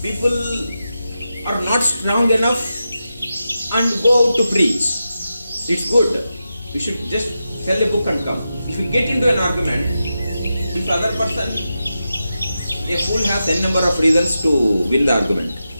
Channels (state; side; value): inverted; both; correlation -0.90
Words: people are not strong enough and go out to preach. It's good. We should just sell a book and come. If you get into an argument, if other person, a fool has n number of reasons to win the argument.